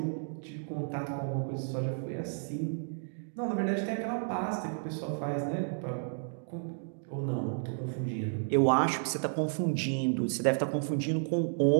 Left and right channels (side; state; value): left; silent; digital silence